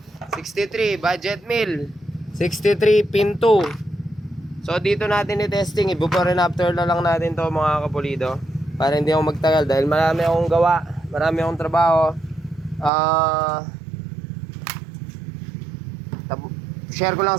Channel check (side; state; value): left; drops out; at 12.9 s